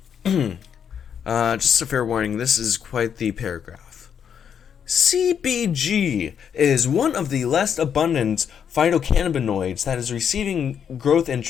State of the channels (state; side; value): quieter; right; 7.9 dB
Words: Just a fair warning, this is quite the paragraph. CBG is one of the less abundant phytocannabinoids that is receiving growth